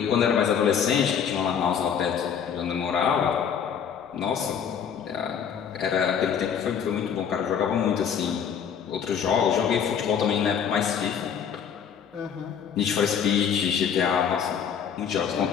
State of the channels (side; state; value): right; quieter; 7.7 dB